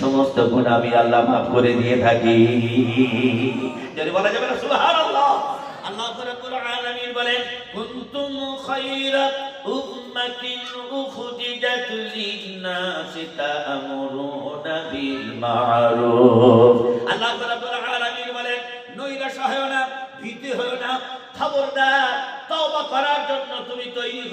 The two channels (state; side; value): identical; both; correlation 1.00